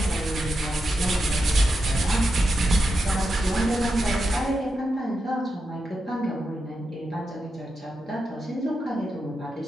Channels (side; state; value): both; normal; correlation 0.87